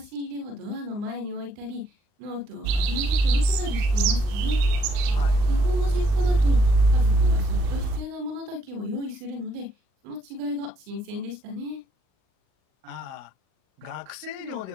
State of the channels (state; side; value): late; left; 39 ms